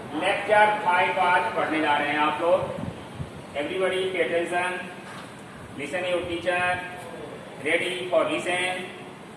आज पढ़ने जा रहे हैं आप लोग. Everybody pay attention. Listen your teacher. Ready for listen.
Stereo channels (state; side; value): identical; both; correlation 1.00